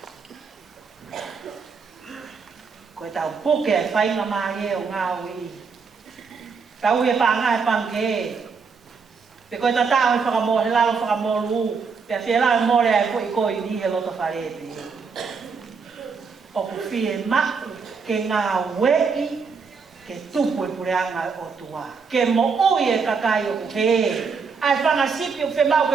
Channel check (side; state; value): left; quieter; 5.3 dB